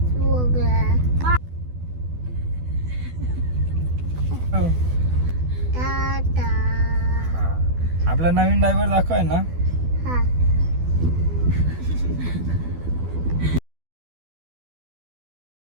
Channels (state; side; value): late; left; 12 ms